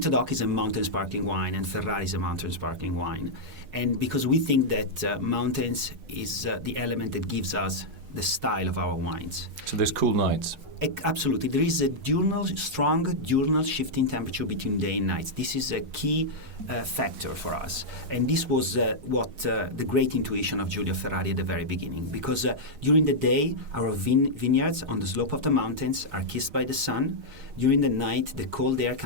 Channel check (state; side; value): late; left; 6.5 ms